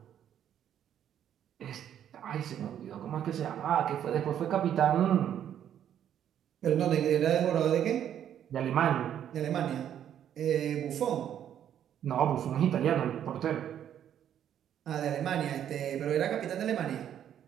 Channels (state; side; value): quieter; left; 10.0 dB